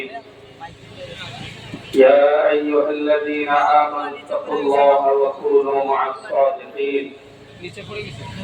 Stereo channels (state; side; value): identical; both; correlation 1.00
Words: يا أيها الذين آمنوا اتقوا الله وكونوا مع الصادقين